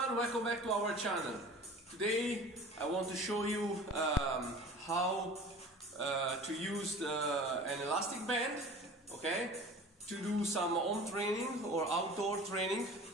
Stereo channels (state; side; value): normal; both; correlation 0.41